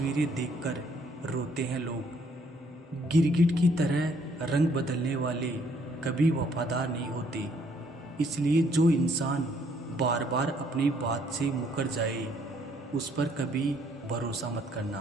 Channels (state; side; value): normal; both; correlation 0.66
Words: देखकर रोते हैं लोग। गिरगिट की तरह रंग बदलने वाले कभी वफादार नहीं होते, इसलिए जो इंसान बार बार अपनी बात से मुकर जाए उस पर कभी भरोसा मत करना।